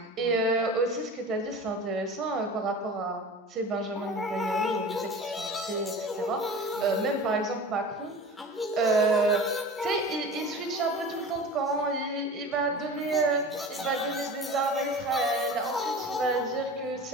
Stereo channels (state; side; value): normal; both; correlation 0.36